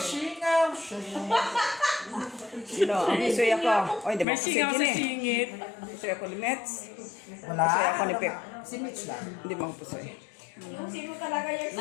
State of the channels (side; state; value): right; drops out; at 4.2 s